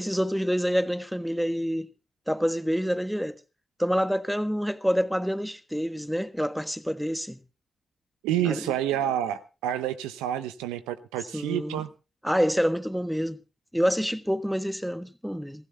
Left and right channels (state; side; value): normal; both; correlation 0.87